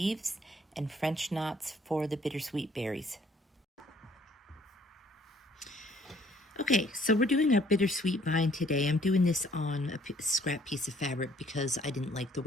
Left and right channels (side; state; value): both; normal; correlation 0.61